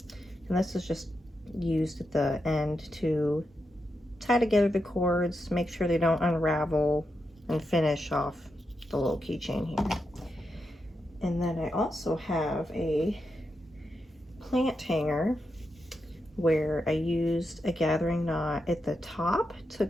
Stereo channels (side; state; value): both; normal; correlation 0.86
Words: and this is just used at the end to tie together the cords, make sure they don't unravel, and finish off the little keychain here. And then I also have a plant hanger where I used a gathering knot at the top to